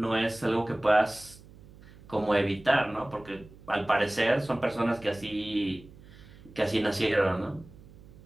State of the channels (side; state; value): right; noise; hum, 21 dB below the sound